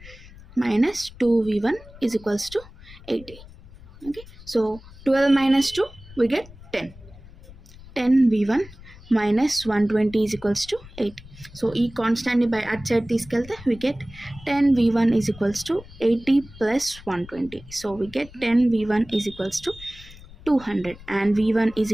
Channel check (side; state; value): left; noise; rumble, 19 dB below the sound